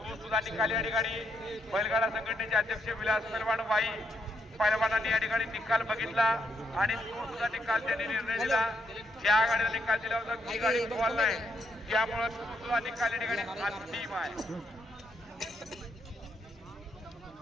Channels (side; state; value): both; normal; correlation 0.77